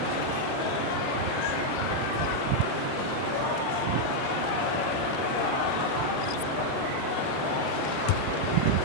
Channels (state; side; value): different; both; correlation 0.00